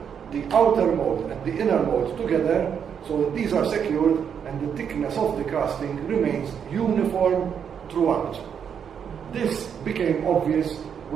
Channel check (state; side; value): quieter; left; 7.7 dB